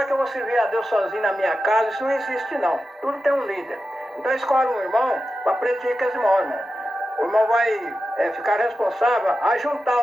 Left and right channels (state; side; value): normal; both; correlation 0.91